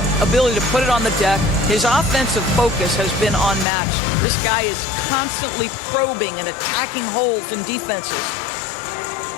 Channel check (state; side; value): drops out; right; at 3.7 s